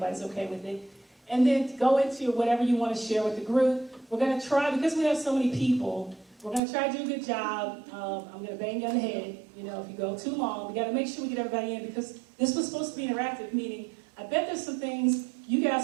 okay with it. And then go into whatever you want to share with the group. We're going to try, because we have so many people, we're going to try to do a good job. I'm going to bang you on the head. If you go too long, we got to make sure we get everybody in, because this was supposed to be interactive, meaning I bet there's some things you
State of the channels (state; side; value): drops out; left; at 6.6 s